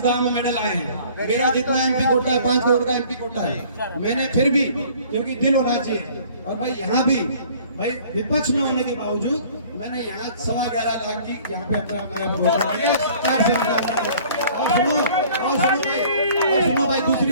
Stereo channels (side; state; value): both; inverted; correlation -0.52